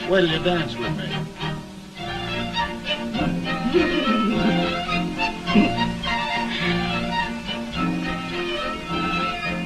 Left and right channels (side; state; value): both; identical; correlation 1.00